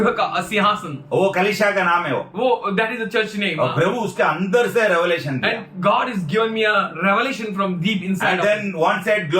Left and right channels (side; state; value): both; identical; correlation 1.00